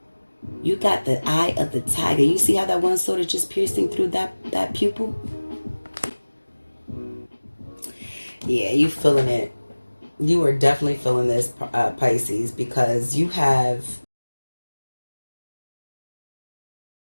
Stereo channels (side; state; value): both; inverted; correlation -1.00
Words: got the eye of the tiger. You see how that one sword is just piercing through that pupil? Yeah, you feeling it. You are definitely feeling this, Pisces, because you have